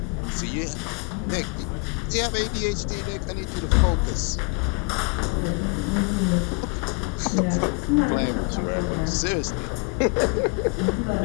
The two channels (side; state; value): right; quieter; 33.7 dB